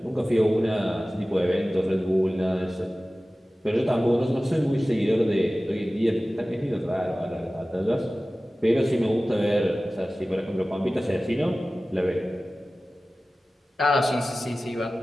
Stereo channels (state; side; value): normal; both; correlation 0.96